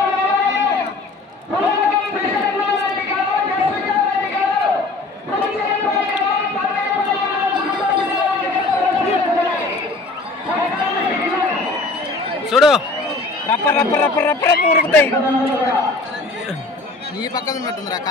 చూడు రప్ప రప్ప రప్ప రప్ప రప్ప ఉరుకుతాయి. ఈ పక్కన ఉన్నట్టుందిరా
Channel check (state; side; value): quieter; right; 3.3 dB